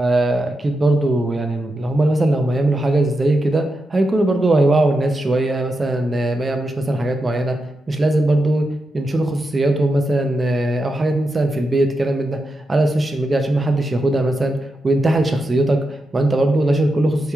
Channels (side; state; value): both; normal; correlation 0.87